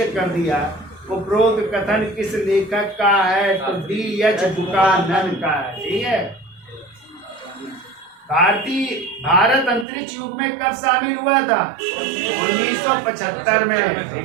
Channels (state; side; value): drops out; left; at 9.9 s